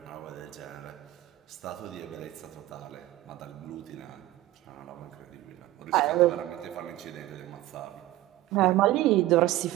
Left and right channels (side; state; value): left; quieter; 15.9 dB